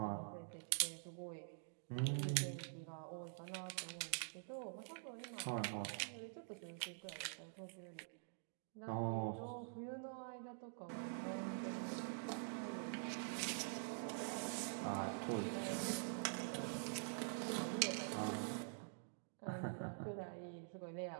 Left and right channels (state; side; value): silent; left; digital silence